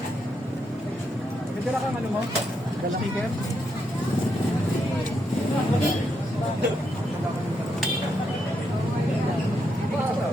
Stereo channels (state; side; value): normal; both; correlation 0.80